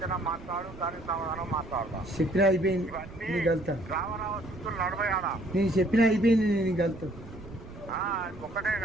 మాట్లాడు, దానికి సమాధానం మాట్లాడతాం. చెప్పినా అయిపోయింది నీకు వెళ్తా. రావణావస్థలు నడవయాడా నేను చెప్పినా అయిపోయింది నీకు వెళ్తా. ఒకటే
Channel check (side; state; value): right; noise; rumble, 16 dB below the sound